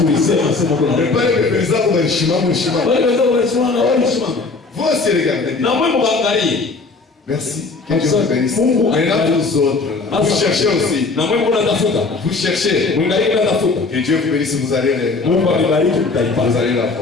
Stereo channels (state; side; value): quieter; right; 3.9 dB